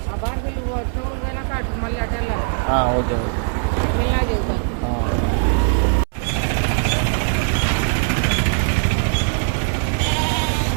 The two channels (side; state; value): left; silent; 66 dB below the other